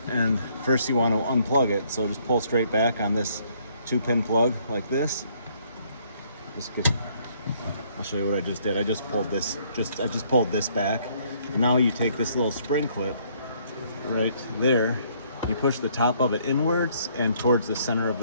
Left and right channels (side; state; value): both; inverted; correlation -0.65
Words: and first you want to unplug it. So just pull straight back on this 2-pin plug like this. I'll show you what I just did. I just pulled this. I just pulled this back. And now you take this little spring clip right there. You push the top of it inwards and towards the center of